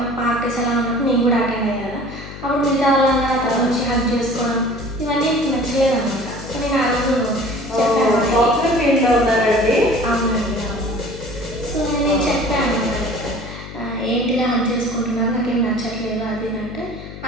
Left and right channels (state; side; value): noise; left; hum, 13 dB below the sound